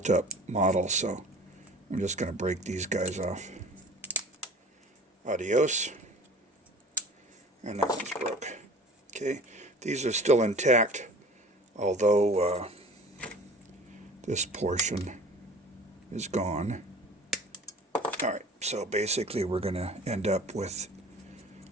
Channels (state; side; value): normal; both; correlation 0.43